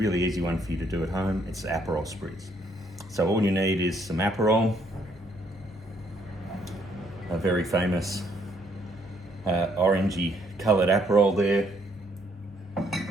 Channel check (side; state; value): both; normal; correlation 0.69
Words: easy one for you to do at home. It's Aperol Spritz. So all you need is some Aperol, a very famous orangey coloured Aperol there,